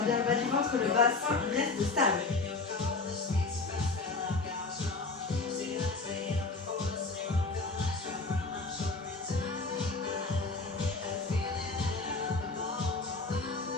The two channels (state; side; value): quieter; right; 3.7 dB